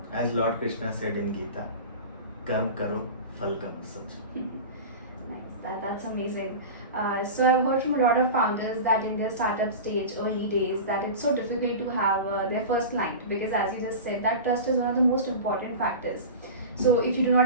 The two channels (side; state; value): both; inverted; correlation -0.30